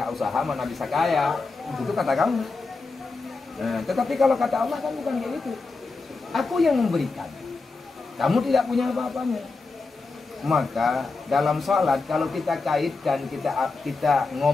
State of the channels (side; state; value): right; quieter; 3.9 dB